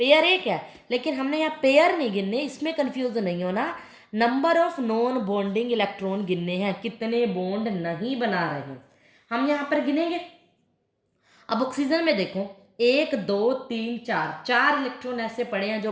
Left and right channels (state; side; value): identical; both; correlation 1.00